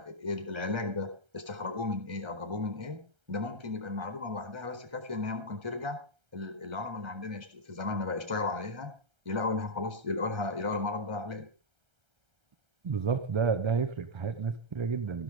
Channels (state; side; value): late; left; 1.3 ms